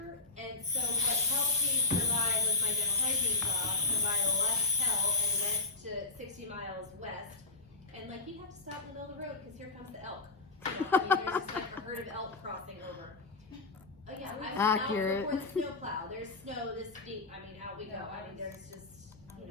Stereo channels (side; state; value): right; quieter; 3.6 dB